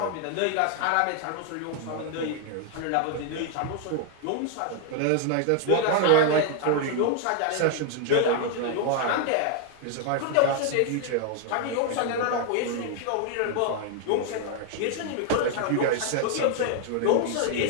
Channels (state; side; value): different; both; correlation 0.00